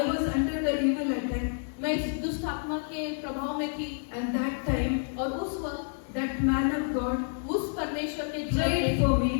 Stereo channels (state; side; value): silent; right; digital silence